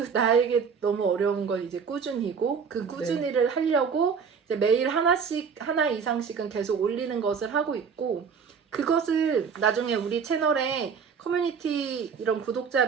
나에게 너무 어려운 건 이제 꾸준히고 그 꾸준히를 하려고 이제 매일 하나 이상씩은 계속 올리는 것을 하고 있고 그것을 나중에 우리 채널에 커뮤니티 이런 구독자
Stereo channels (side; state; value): left; quieter; 6.2 dB